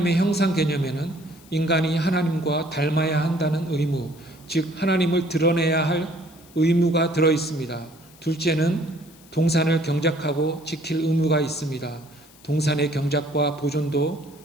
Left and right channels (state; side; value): noise; left; hiss, 25 dB below the sound